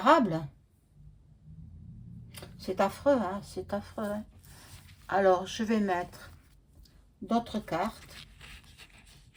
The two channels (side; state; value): both; identical; correlation 1.00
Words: C'est affreux, hein, c'est affreux. Hein. Alors, je vais mettre d'autres cartes.